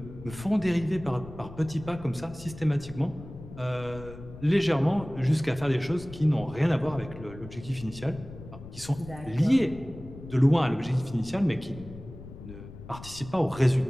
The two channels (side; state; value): left; noise; rumble, 15 dB below the sound